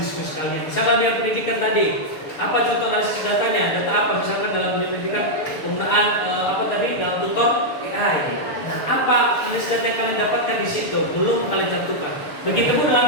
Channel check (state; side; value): late; right; 6.7 ms